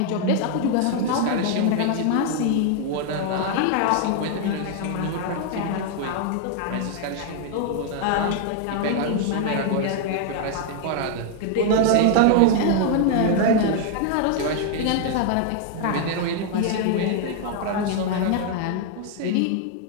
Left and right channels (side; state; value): both; different; correlation 0.00